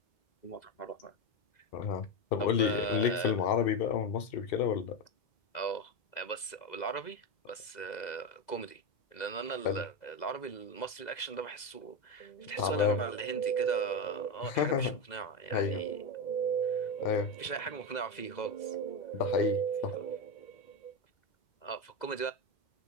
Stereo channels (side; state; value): right; late; 2.0 ms